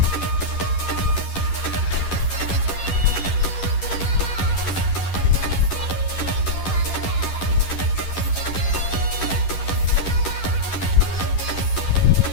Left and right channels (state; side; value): late; right; 11 ms